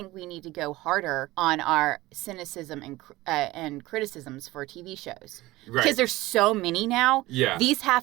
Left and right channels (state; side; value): quieter; left; 18.8 dB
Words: we need to go harder on our cynicism and criticisms for TV shows. Right. Because there's so many now. Yeah. These